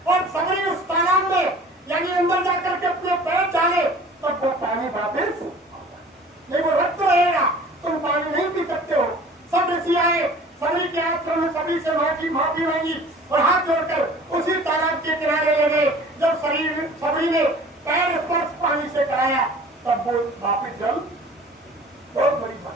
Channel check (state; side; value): normal; both; correlation 0.46